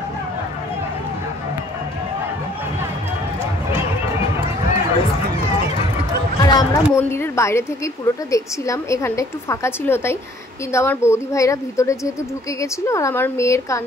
আর আমরা মন্দিরের বাইরে থেকেই পুরোটা দেখছিলাম, এখানটা একটু ফাঁকা ছিল তাই। কিন্তু আমার বৌদি ভাইরা ভিতরে যেহেতু ঢুকে গেছিলো, আর আমার মেয়ের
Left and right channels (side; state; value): both; normal; correlation 0.59